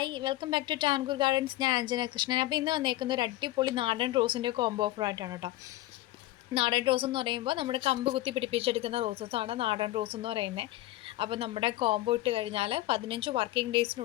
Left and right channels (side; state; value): right; quieter; 16.7 dB